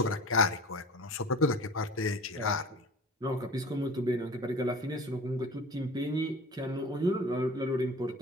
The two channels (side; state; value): both; normal; correlation 0.40